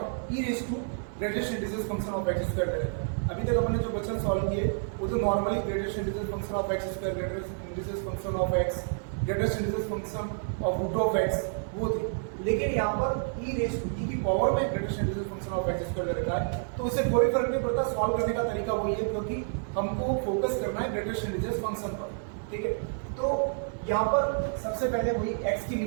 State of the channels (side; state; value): left; silent; digital silence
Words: greatest integer function of x square दे रखा है। अभी तक हमने जो क्वेश्चन सॉल्व किए वो तो normally greatest integer function of x square, greatest integer function of x, greatest integer function of √x वो थी। लेकिन यहाँ पर e की पावर में greatest integer function of x square दे रखा है, तो उससे कोई फर्क नहीं पड़ता। सॉल्व करने का तरीका वही है, क्योंकि हमको फोकस करना है ग्रेटेस्ट इंटीजर फंक्शन पर, ठीक है। तो यहाँ पर सबसे पहले वही x की